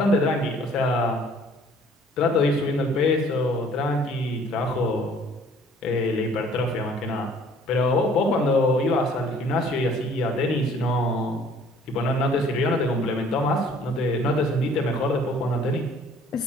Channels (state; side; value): normal; both; correlation 0.55